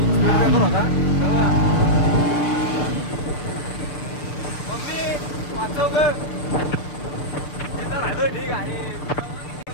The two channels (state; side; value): late; right; 7.0 ms